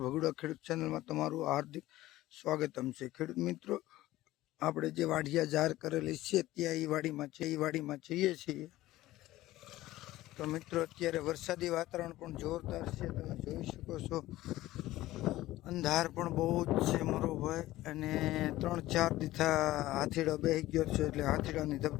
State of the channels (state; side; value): quieter; right; 16.3 dB